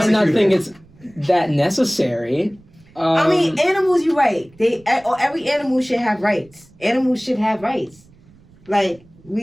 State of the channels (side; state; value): right; noise; rumble, 27 dB below the sound